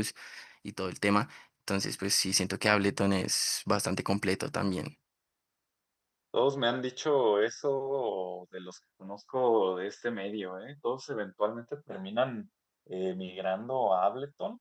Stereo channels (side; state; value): both; identical; correlation 1.00